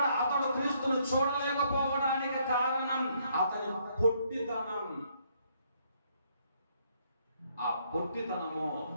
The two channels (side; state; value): both; inverted; correlation -0.70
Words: అతడు క్రీస్తును చూడలేకపోవడానికి కారణం అతని పొట్టితనం. ఆ పొట్టితనము